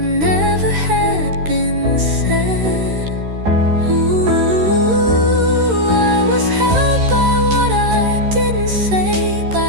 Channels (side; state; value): left; late; 13 ms